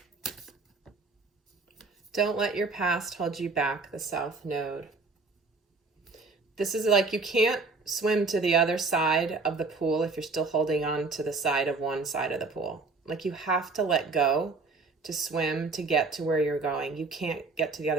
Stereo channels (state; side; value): quieter; left; 3.9 dB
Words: Don't let your past hold you back, the South Node. This is like you can't swim to the other side of the pool if you're still holding on to the side of one side of the pool. Like you have to let go to swim to get to where you're going. You can't get to the